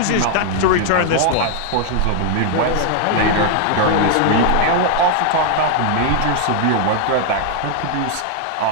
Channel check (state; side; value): different; both; correlation 0.00